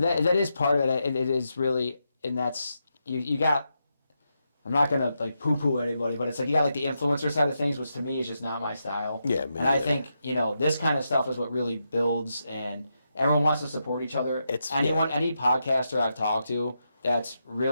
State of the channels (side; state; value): both; inverted; correlation -0.85